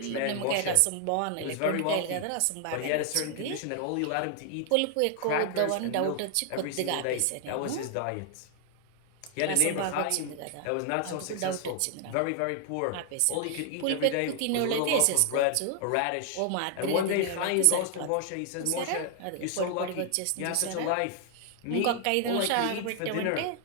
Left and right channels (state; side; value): different; both; correlation 0.00